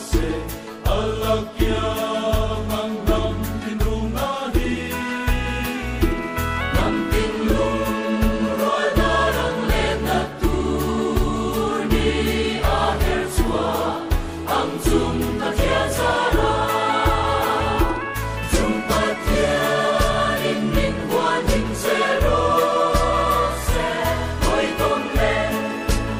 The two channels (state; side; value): identical; both; correlation 1.00